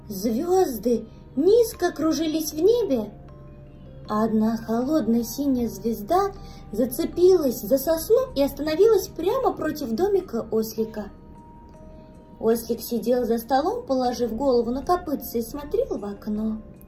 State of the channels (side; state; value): both; identical; correlation 1.00